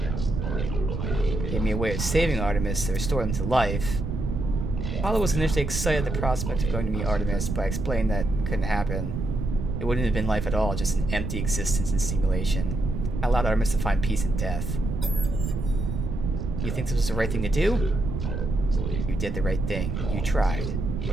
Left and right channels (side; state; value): right; noise; rumble, 3 dB below the sound